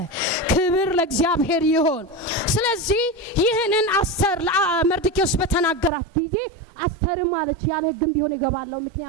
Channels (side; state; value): left; drops out; at 5.9 s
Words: ክብር ለእግዚአብሔር ይሁን። ስለዚህ ይህንን አስተር ለመርዶክዮስ በተናገራት ጊዜ አስተር ማለች ያለ ህግም ቢሆን ይገባለው